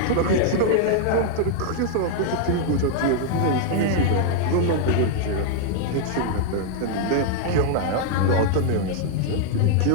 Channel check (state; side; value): different; both; correlation 0.00